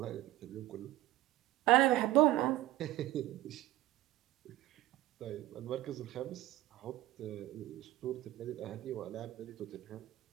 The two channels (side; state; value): left; quieter; 15.8 dB